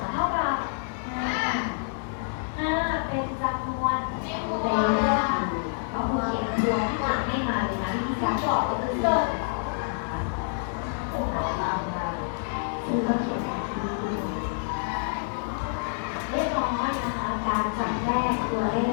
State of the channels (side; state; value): right; silent; digital silence